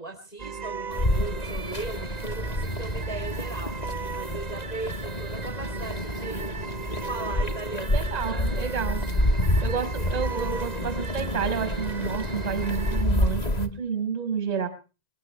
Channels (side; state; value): right; late; 1.9 ms